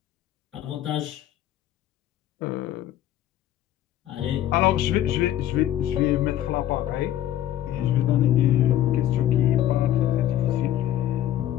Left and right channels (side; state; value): right; quieter; 12.4 dB